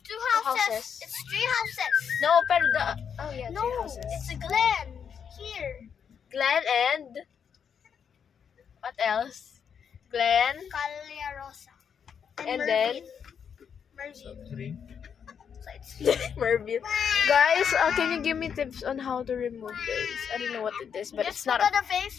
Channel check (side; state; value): right; quieter; 7.4 dB